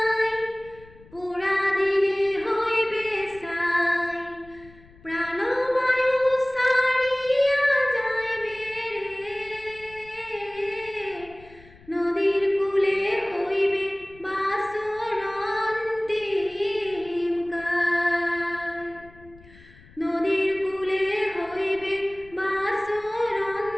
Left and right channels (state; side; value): noise; left; rumble, 24 dB below the sound